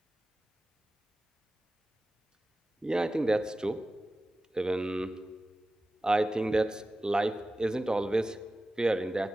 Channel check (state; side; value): normal; both; correlation 0.95